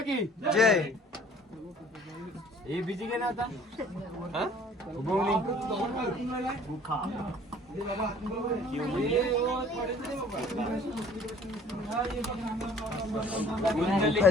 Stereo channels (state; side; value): normal; both; correlation 0.53